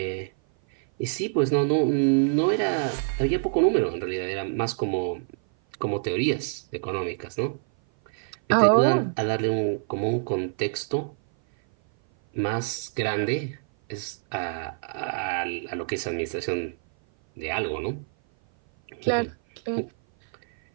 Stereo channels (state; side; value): silent; left; 56 dB below the other